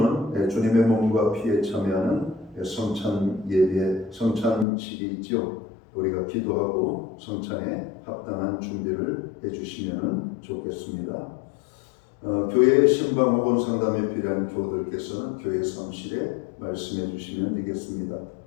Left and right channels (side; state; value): right; drops out; at 4.7 s